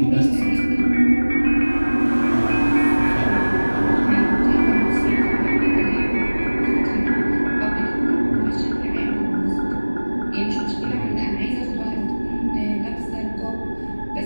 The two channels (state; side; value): inverted; both; correlation -1.00